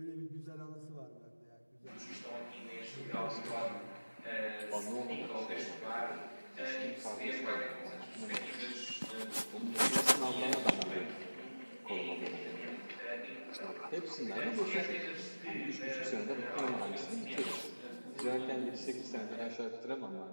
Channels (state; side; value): inverted; both; correlation -1.00